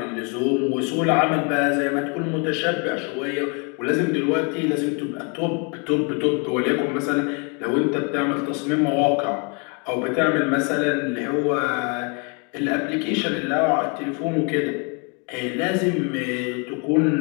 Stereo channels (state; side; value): quieter; right; 34.5 dB